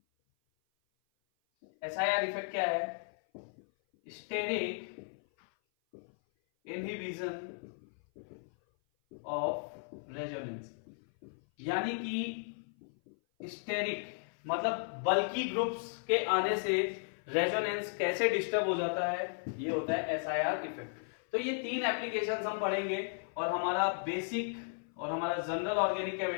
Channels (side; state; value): right; silent; 54 dB below the other